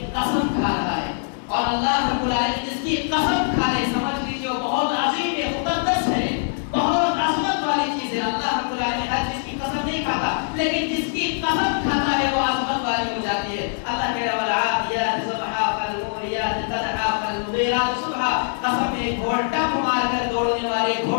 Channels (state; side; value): silent; right; digital silence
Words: قسم کھا رہا ہے. اور اللہ رب العالمین جس کی قسم کھا لے سمجھ لیجیے بہت عظیم ہے, مقدس ہے, بہت عظمت والی چیز ہے. اللہ رب العالمین ہر چیز کی قسم نہیں کھاتا, لیکن جس کی قسم کھاتا ہے وہ عظمت والی ہو جاتی ہے. اللہ کہہ رہا ہے والعادیات ضبحا فالموریات قدحا فالمغیرات صبحا. قسم ہے گھوڑا ٹپ مار کر دوڑنے والے